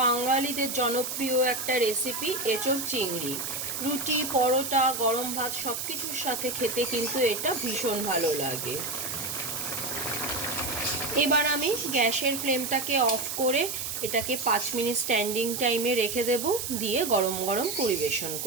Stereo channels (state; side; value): noise; right; hiss, 4 dB below the sound